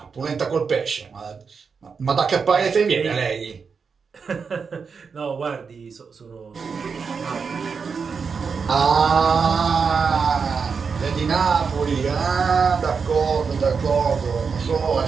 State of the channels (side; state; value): left; quieter; 5.6 dB